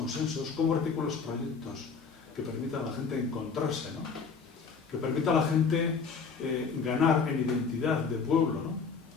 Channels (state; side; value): quieter; right; 5.3 dB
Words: cómo articulas proyectos que permitan a la gente encontrarse, ¿no? Que permita a la gente ganar en identidad de pueblo, ¿no?